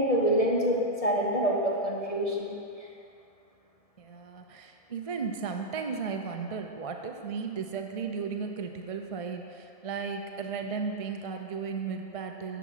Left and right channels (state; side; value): late; right; 1.7 ms